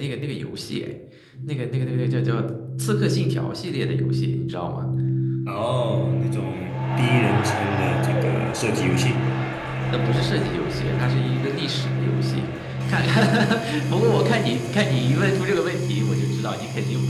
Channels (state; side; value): identical; both; correlation 1.00